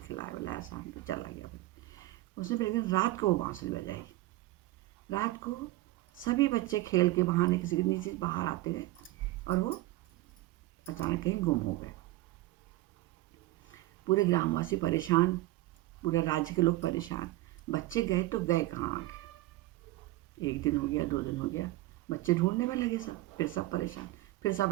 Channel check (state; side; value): quieter; left; 17.7 dB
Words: खिलाया बुलाया, शाम को चला गया। उसने फिर एक दिन रात को वो बाँसुरी बजाई। रात को सभी बच्चे खेल के बहाने किसी के नीचे बाहर आते गए और वो अचानक कहीं गुम हो गए। पूरे ग्रामवासी परेशान, पूरे राज्य के लोग परेशान। बच्चे गए तो गए कहाँ आगे। 1 दिन हो गया, 2 दिन हो गया, बच्चे ढूंढने में लगे सब, फिर सब परेशान। फिर